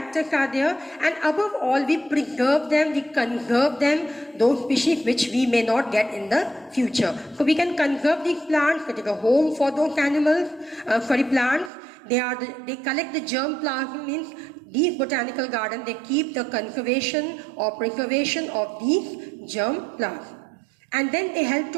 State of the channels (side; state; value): left; drops out; at 11.7 s